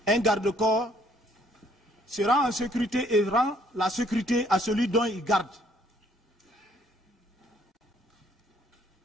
un garde-corps se rend en sécurité et rend la sécurité à celui dont il garde.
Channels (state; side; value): normal; both; correlation 0.63